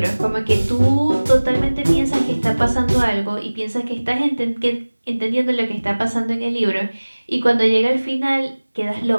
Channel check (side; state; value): both; inverted; correlation -1.00